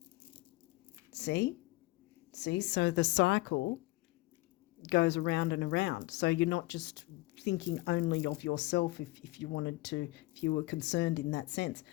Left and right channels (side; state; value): right; quieter; 20.6 dB